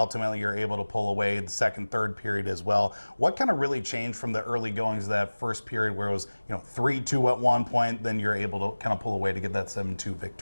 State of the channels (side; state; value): both; inverted; correlation -1.00